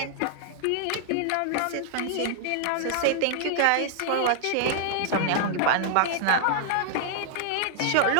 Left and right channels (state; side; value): different; both; correlation -0.01